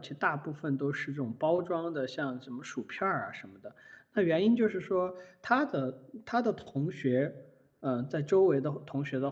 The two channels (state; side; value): identical; both; correlation 1.00